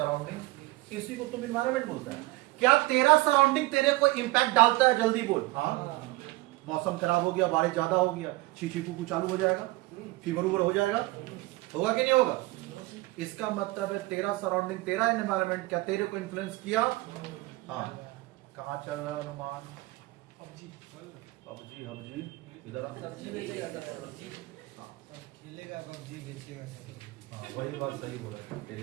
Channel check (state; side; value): quieter; left; 20.8 dB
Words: इसी को तुम एनवायरमेंट बोलता है। क्या तेरा सराउंडिंग तेरे को इंपैक्ट डालता है? जल्दी बोल। हाँ, मौसम खराब हो गया, बारिश ज्यादा हो गया, शीशी कुकू चालू हो जाएगा, फीवर उवर हो जाएगा, होगा कि नहीं होगा? इसका मतलब है तेरा सराउंडिंग, तेरा एनवायरमेंट क्या तेरे को इन्फ्लुएंस किया? हाँ। कहाँ चल रहा है अनुमान? पबजी हबजी इधर खेलेगा पबजी, बेचेगा सब्जी। हाँ वही बात सही बोला है,